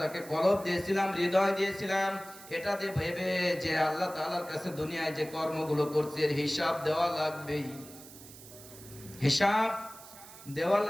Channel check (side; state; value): right; noise; hiss, 18 dB below the sound